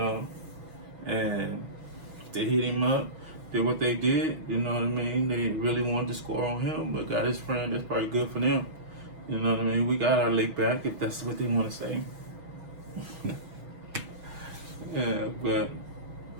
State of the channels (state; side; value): late; left; 6.3 ms